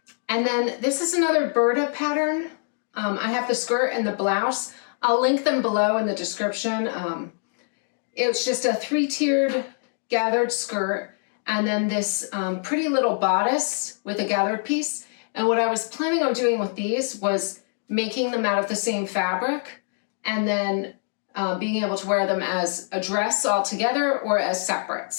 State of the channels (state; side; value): silent; right; 57 dB below the other